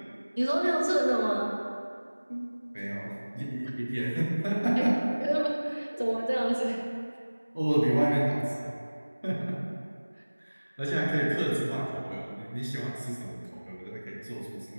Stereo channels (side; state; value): both; inverted; correlation -1.00